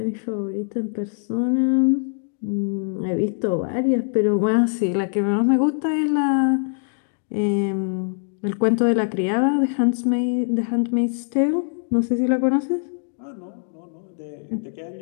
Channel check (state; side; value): silent; right; digital silence